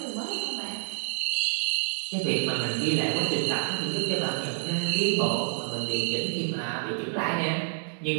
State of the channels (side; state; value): left; silent; digital silence